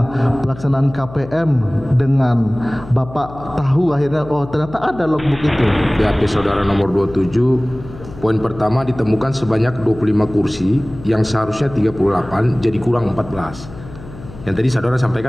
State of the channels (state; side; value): noise; left; hum, 16 dB below the sound